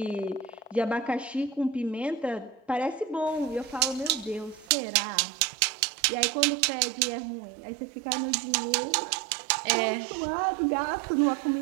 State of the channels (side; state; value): left; drops out; at 4.7 s